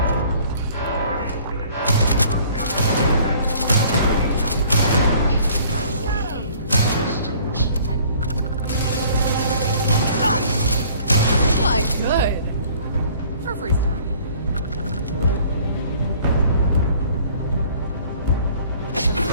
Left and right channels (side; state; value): both; inverted; correlation -0.54